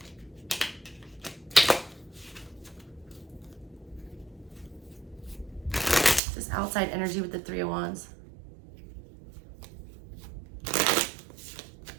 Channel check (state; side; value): drops out; left; at 6.2 s